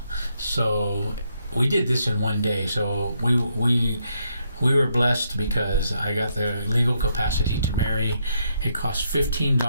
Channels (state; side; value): inverted; both; correlation -0.76